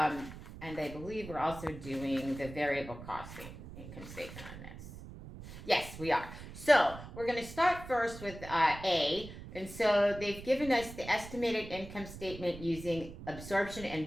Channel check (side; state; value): right; noise; rumble, 13 dB below the sound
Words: I believe we're also doing the variable costing income statement on this. Yes, we are. So we're going to start first with A. And so they've given us the estimated income statement using absorption